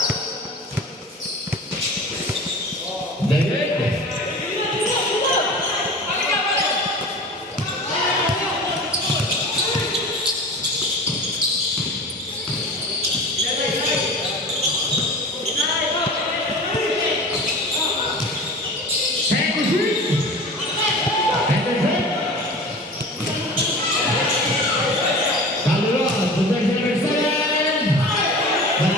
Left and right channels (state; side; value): normal; both; correlation 0.36